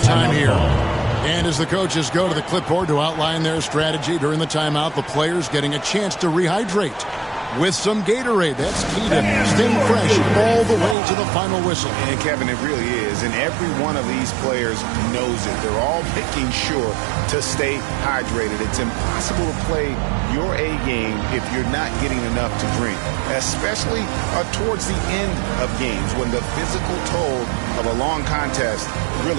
here. And as the coaches go to the clipboard to outline their strategy during the timeout, the players getting a chance to rehydrate with some Gatorade. That's key to staying fresh all the way to the final whistle. And Kevin, it really is. And every one of these players knows it. They're all making sure to stay hydrated. It's impossible to play your A game if you're not getting enough to drink, especially towards the end of games when the physical toll of a long contest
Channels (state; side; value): drops out; left; at 11.0 s